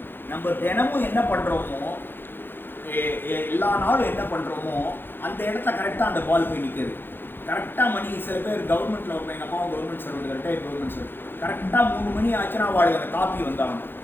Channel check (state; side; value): late; right; 0.10 ms